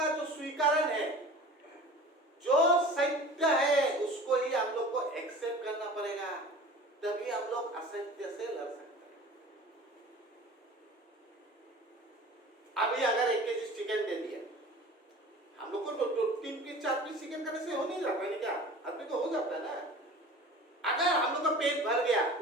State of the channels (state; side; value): normal; both; correlation 0.41